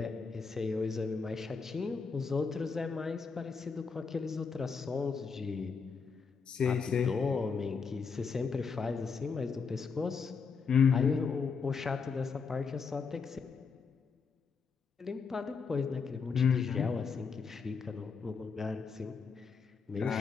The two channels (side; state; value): right; quieter; 5.4 dB